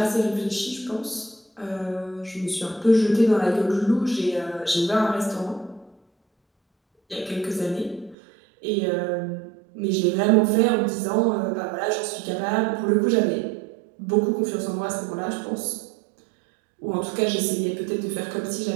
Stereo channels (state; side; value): drops out; left; at 8.2 s